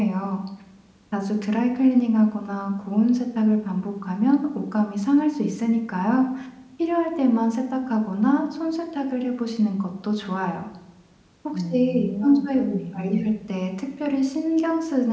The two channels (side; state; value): both; identical; correlation 1.00